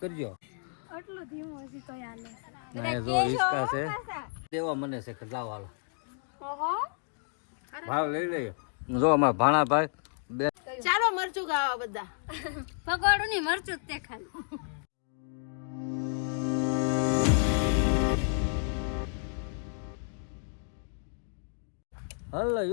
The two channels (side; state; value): right; silent; 57 dB below the other